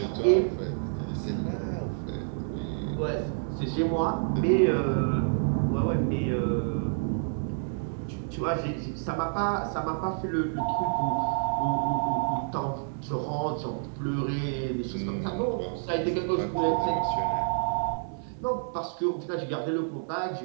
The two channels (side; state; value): left; silent; digital silence